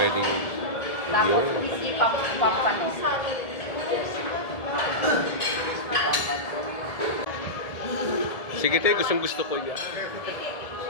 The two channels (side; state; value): right; late; 1.7 ms